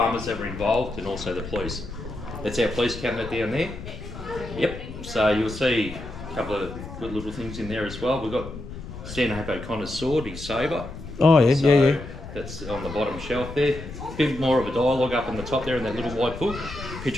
that were involved, and also the police. That's our police cabinet down there. Yep, so you'll see a couple of good little things in there as well. We've got Stanhope O'Connor's sword, his sabre. Oh, yeah, So yeah. that's on the bottom shelf there. A bit more of a dialogue up on the top there in that little white book.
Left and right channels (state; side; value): noise; left; rumble, 11 dB below the sound